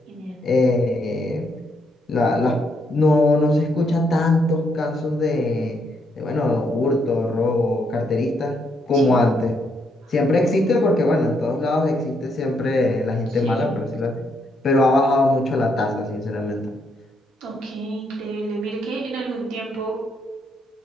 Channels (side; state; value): both; normal; correlation 0.75